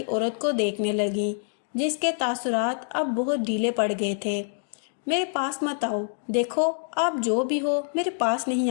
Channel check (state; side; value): silent; right; digital silence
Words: عورت کو دیکھنے لگی جس کے تاثرات اب بہت ڈھیلے پڑ گئے تھے۔ میرے پاس مت آؤ، دیکھو آپ جو بھی ہو میرے پاس نہیں